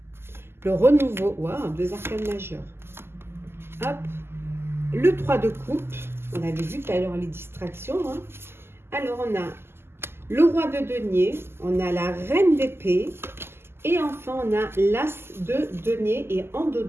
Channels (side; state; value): left; late; 0.12 ms